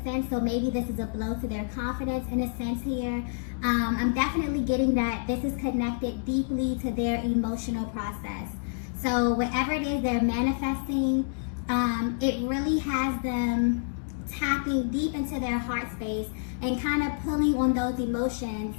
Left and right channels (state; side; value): silent; right; digital silence